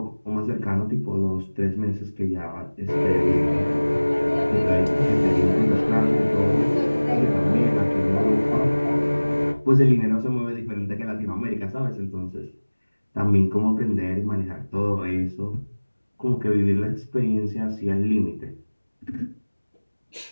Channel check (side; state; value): both; inverted; correlation -1.00